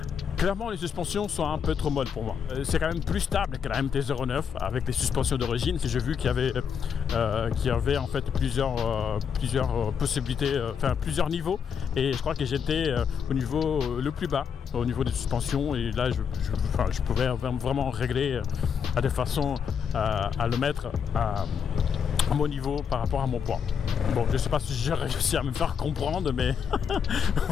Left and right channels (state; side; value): quieter; right; 7.2 dB